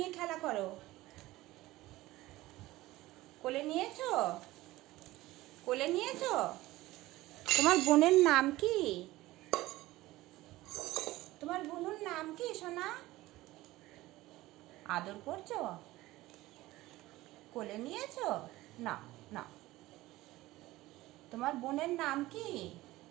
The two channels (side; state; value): left; quieter; 17.8 dB